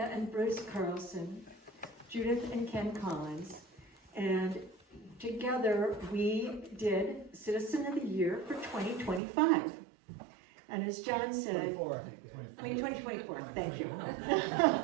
and Bruce Carlson, Judith and Ken Collins, and together we did Citizen of the Year for 2025. And as John said, 2024, thank you.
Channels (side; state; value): left; drops out; at 9.2 s